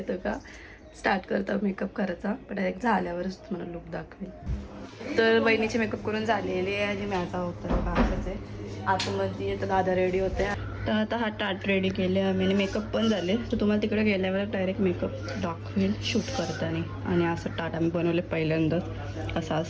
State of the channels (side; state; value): both; identical; correlation 1.00